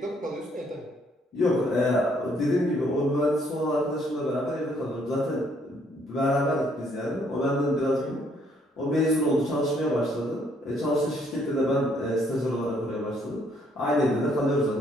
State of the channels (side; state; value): both; normal; correlation 0.67